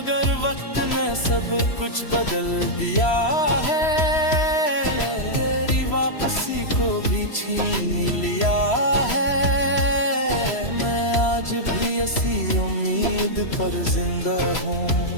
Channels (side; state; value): right; late; 3.0 ms